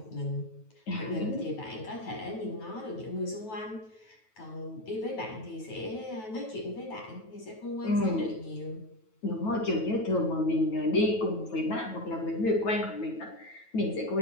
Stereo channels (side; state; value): right; late; 9.2 ms